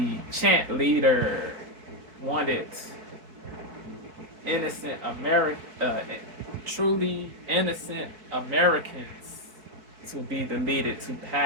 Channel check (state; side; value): late; left; 3.9 ms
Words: chant leader wanted innocent truly innocent Americans to be deleted, to